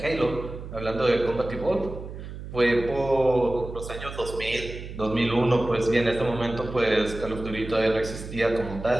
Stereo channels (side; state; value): right; noise; hum, 10 dB below the sound